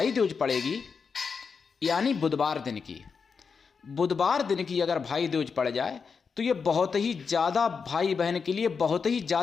दूज पड़ेगी, यानी बुधवार दिन की अगर भाई दूज पड़ जाए तो ये बहुत ही ज़्यादा भाई बहन के लिए बहुत ही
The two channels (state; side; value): quieter; right; 5.6 dB